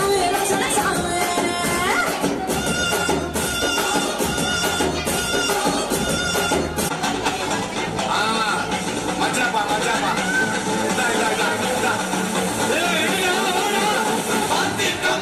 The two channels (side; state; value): both; identical; correlation 1.00